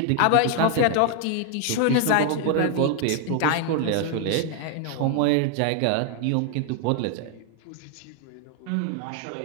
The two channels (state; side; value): different; both; correlation 0.00